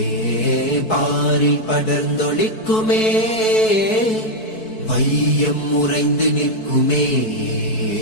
பாரில் படர்ந்தொழிக்குமே வையம் உறைந்து நிற்குமே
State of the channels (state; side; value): late; right; 4.6 ms